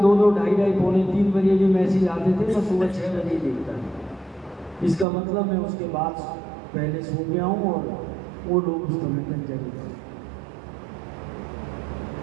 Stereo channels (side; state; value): left; drops out; at 5.1 s